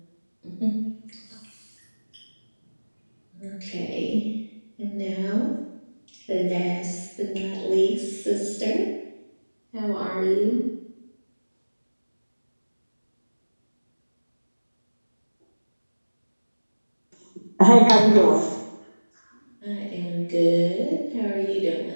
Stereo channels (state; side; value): inverted; both; correlation -1.00